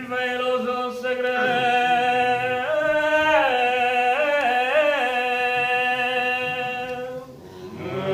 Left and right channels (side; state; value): both; identical; correlation 1.00